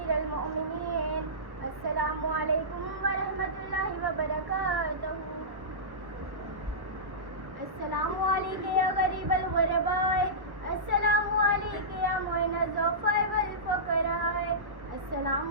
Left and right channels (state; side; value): late; left; 1.2 ms